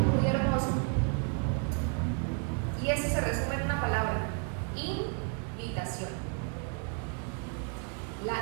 hermoso. Y eso se resume en una palabra: invitación.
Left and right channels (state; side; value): quieter; left; 39.5 dB